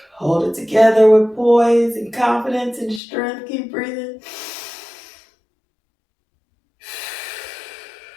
Hold it together with poise and confidence and strength. Keep breathing.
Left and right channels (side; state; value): right; drops out; at 3.0 s